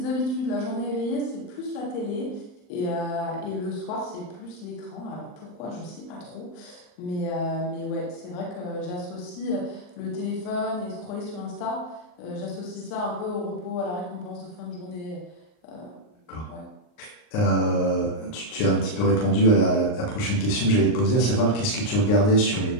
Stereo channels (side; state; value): right; late; 39 ms